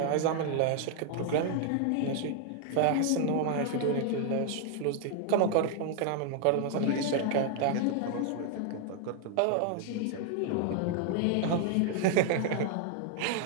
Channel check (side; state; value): both; different; correlation 0.00